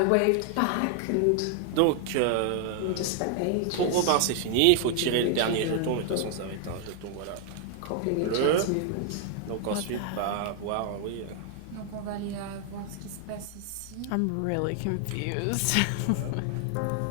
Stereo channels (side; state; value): both; different; correlation 0.00